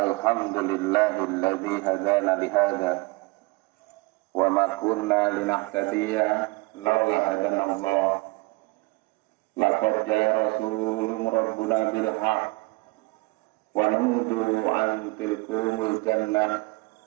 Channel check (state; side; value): quieter; left; 24.8 dB